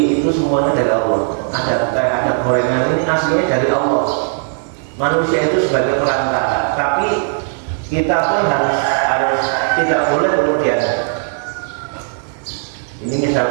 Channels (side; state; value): left; silent; 68 dB below the other